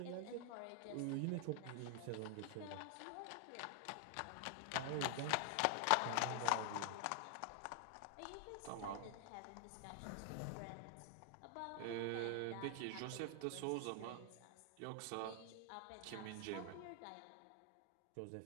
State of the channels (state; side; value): different; both; correlation 0.00